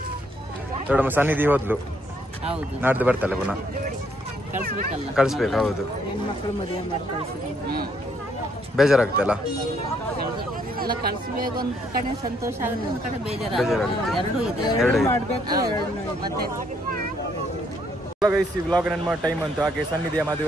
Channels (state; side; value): normal; both; correlation 0.70